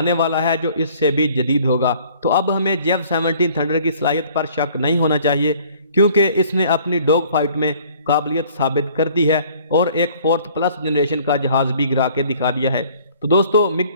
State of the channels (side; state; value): both; inverted; correlation -0.55